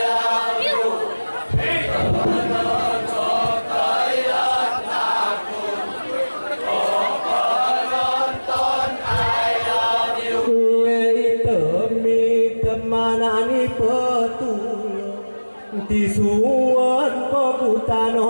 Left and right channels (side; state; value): both; inverted; correlation -1.00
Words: Manani petul tisuan ko